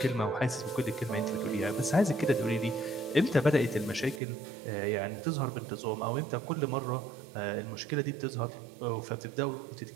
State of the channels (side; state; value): left; drops out; at 4.2 s